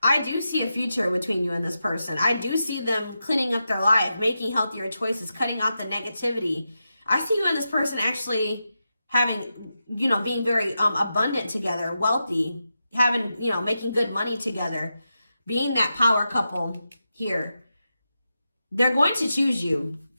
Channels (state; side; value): inverted; both; correlation -0.89